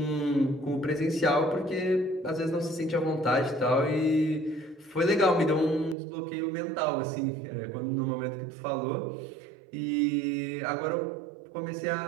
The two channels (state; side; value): drops out; left; at 6.0 s